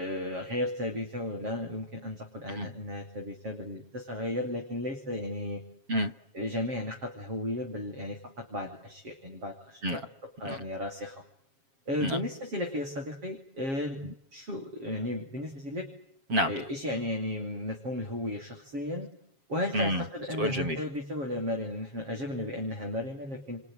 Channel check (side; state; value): left; late; 7.4 ms